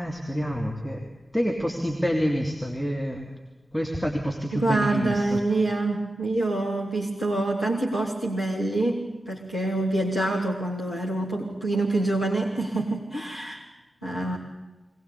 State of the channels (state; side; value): normal; both; correlation 0.90